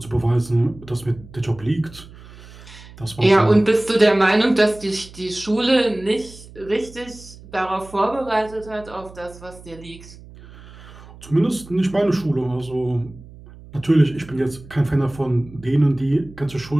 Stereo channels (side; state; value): right; noise; hum, 19 dB below the sound